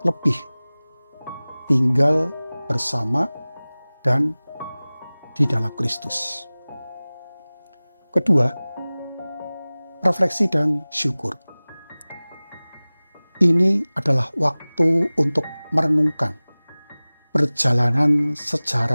lebih tinggal bersama dan di dalam Kristus. Kedua, refleksi dan syukur. Ini adalah waktu untuk merenungkan perjalanan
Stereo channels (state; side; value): inverted; both; correlation -0.99